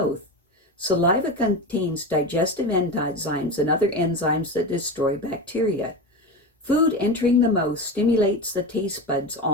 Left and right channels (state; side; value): normal; both; correlation 0.22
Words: Saliva contains digestive enzymes and other enzymes that destroy bacteria. Food entering the mouth stimulates the taste buds